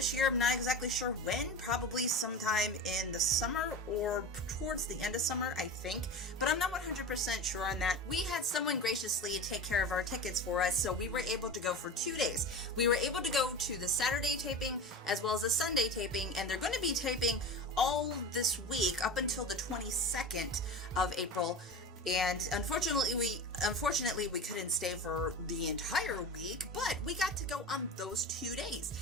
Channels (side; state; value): both; normal; correlation 0.29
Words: year. I'm not exactly sure when, probably sometime in the summer or towards the end of summer, I think, but I'm not 100% sure on that. We had someone graciously take care of our tickets for us, so we were able to go for 2 days. We were able to go to the Saturday taping as well as the Sunday taping, and they're going to be taping all this week up until the 22nd of April. And unfortunately we couldn't stay for the entire week, but we got to go on those 2 days,